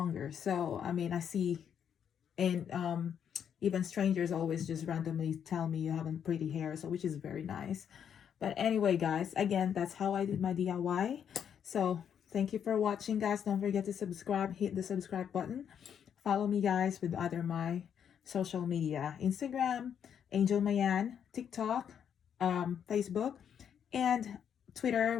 So I mean, I see, and even strangers always just randomly tell me you have a pretty hair, so which is very nice. But anyway, guys, again, that's how I did my DIY. So thank you for watching, guys. Don't forget to subscribe, hit the subscribe button. Follow me, guys, with other my social media: Instagram, Angel Mayan; TikTok, Facebook, and Twitter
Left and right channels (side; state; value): right; quieter; 8.3 dB